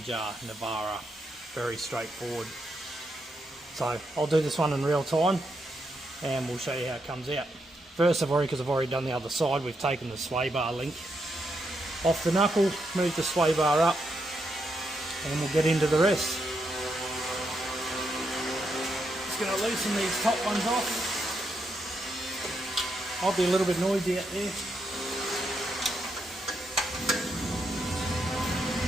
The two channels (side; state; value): both; normal; correlation 0.81